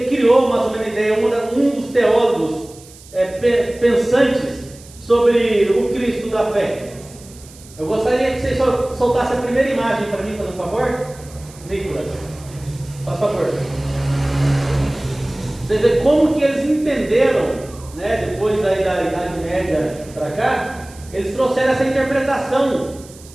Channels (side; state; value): right; noise; hiss, 22 dB below the sound